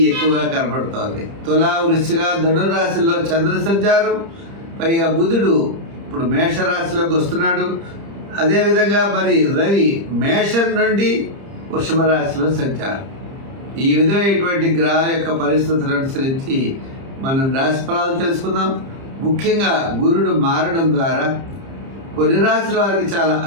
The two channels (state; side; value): late; left; 30 ms